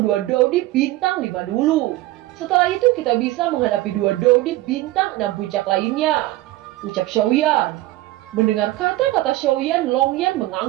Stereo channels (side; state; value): left; quieter; 17.5 dB